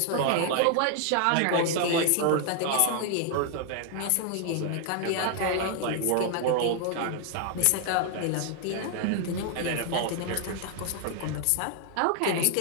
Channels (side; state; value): both; different; correlation 0.00